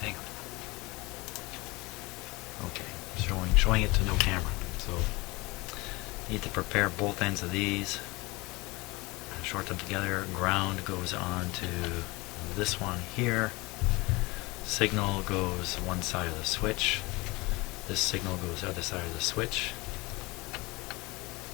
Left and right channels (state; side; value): quieter; right; 23.8 dB